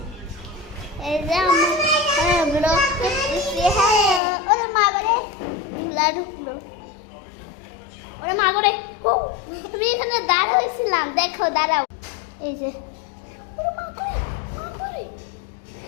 এই যে আমার ব্লগ করতেছি হ্যাঁ ওরে মা করে ধুলা ঢুকলো ওরে মা করে তুমি এখানে দাঁড়া হয়েছিলাম দেখো দাঁড়াও এই যে ওরে মা করে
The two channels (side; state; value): right; drops out; at 4.2 s